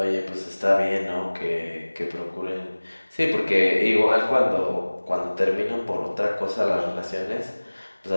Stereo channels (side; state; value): both; inverted; correlation -1.00